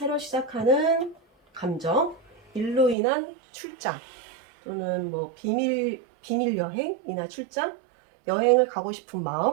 시작하는 감정, 일로 인한 출장 또는 뭐 비밀 여행이나 출장, 여행을 가고 싶은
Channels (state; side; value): drops out; left; at 3.0 s